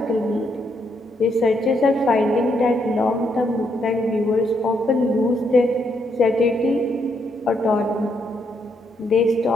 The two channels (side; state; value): both; normal; correlation 0.76